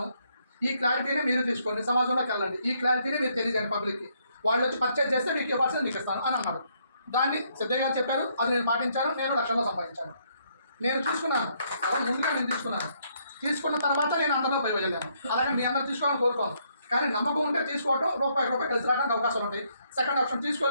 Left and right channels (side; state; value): both; inverted; correlation -0.71